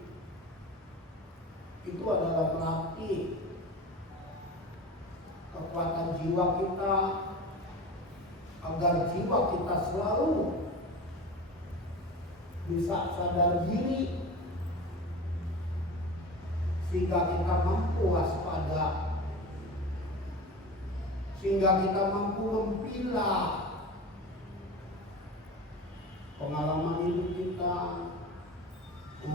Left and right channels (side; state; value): both; normal; correlation 0.32